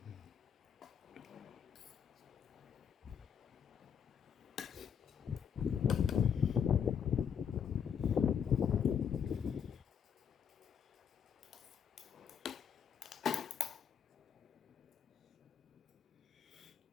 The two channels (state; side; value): quieter; right; 7.7 dB